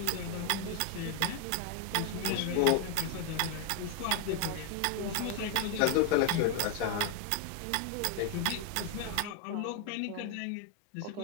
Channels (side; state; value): both; different; correlation 0.01